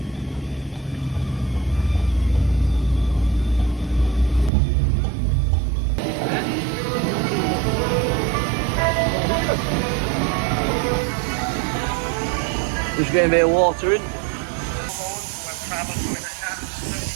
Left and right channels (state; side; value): drops out; left; at 4.5 s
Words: Just getting a bit of water in.